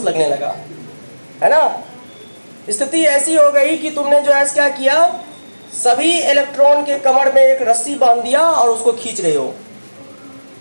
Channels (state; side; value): inverted; both; correlation -1.00